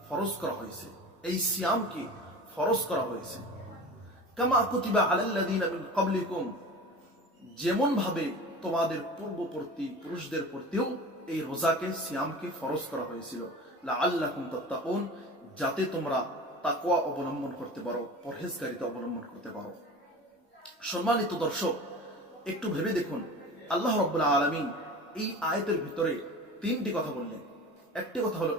ফরজ করা হয়েছে, এই সিয়ামকে ফরজ করা হয়েছে। কামা কুতিবা আলাল্লাযীনা মিন ক্বাবলিকুম, যেমন ভাবে তোমাদের পূর্ববর্তী পুরুষদের প্রতিও এই রোজাকে সিয়ামকে ফরজ করা হয়েছিল, লাআল্লাকুম তাত্তাকুন, যাতে তোমরা তাকওয়া অবলম্বন করতে পারো, পরহেজগারিতা অবলম্বন করতে পারো। সম্মানিত দর্শক, একটু ভেবে দেখুন, আল্লাহ রাব্বুল আলামিন এই আয়াতের ভিতরে তিনটি কথা বললেন। একটি কথা হলো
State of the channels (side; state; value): both; normal; correlation 0.36